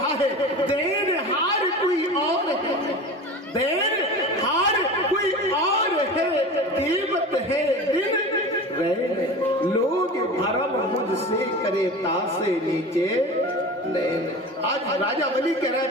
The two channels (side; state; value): both; normal; correlation 0.33